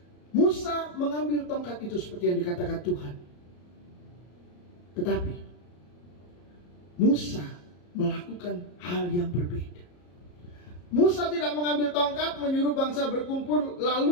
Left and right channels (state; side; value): late; right; 34 ms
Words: Musa mengambil tongkat itu seperti yang dikatakan Tuhan. Tetapi Musa melakukan hal yang berbeda. Musa tidak mengambil tongkat, menyuruh bangsa berkumpul,